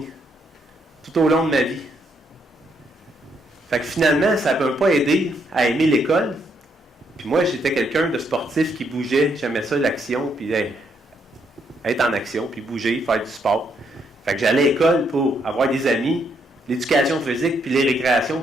Tout au long de ma vie. Fait que finalement, ça ne m'a pas aidé à aimer l'école. Puis moi, j'étais quelqu'un de sportif qui bougeait. J'aimais ça, l'action, puis être en action, puis bouger, faire du sport. Fait que j'allais à l'école pour avoir des amis, l'éducation physique, puis les récréations,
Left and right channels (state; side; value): normal; both; correlation 0.74